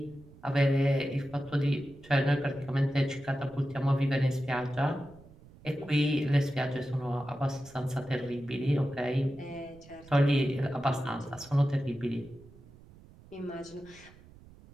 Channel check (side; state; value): right; noise; rumble, 22 dB below the sound